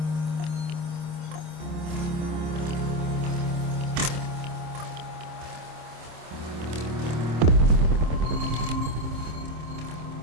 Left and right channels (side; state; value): left; late; 26 ms